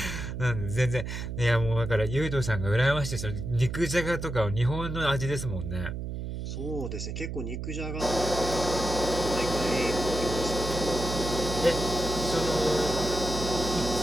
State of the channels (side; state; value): right; noise; hum, 5 dB below the sound